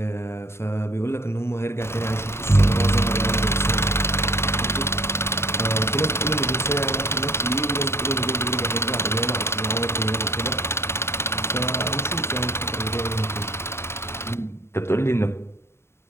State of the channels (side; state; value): right; late; 0.12 ms